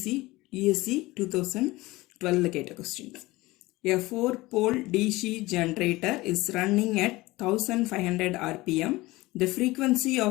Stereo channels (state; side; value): quieter; right; 20.1 dB